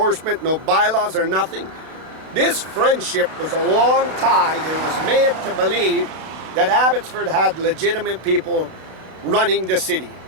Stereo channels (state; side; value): late; left; 31 ms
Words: no bylaws or nothing. This friendship was a long tide and was made to believe that Abbotsford had legitimate people running the city.